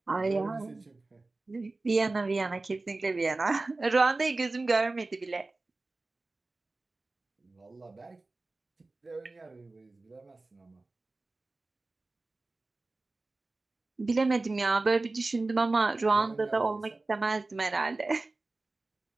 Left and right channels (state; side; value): quieter; left; 3.3 dB